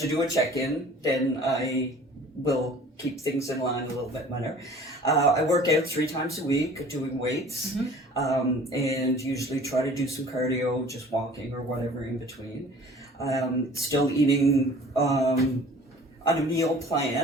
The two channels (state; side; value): normal; both; correlation 0.48